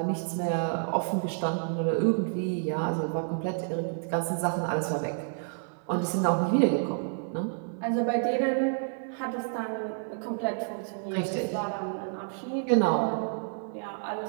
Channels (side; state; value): left; silent; digital silence